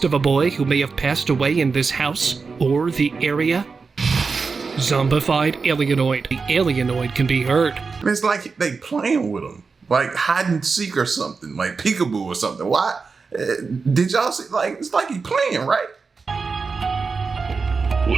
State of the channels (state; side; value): quieter; left; 4.7 dB